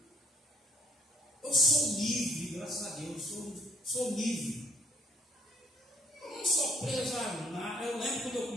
Eu sou livre, graças a Deus, sou livre. Eu não sou preso a nada. Eu lembro quando eu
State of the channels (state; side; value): normal; both; correlation 0.64